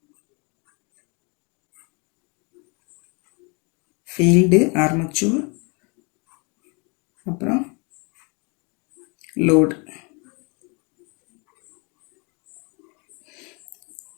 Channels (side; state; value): right; quieter; 32.4 dB